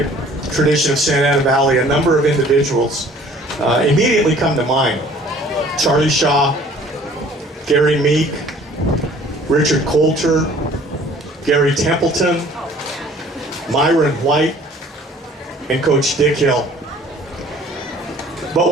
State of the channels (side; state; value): both; normal; correlation 0.53